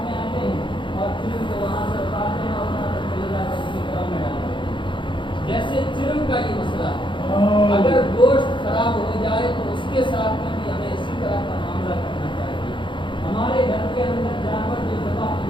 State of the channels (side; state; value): right; late; 0.23 ms